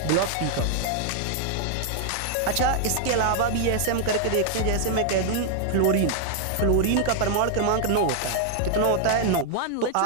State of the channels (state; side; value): different; both; correlation 0.00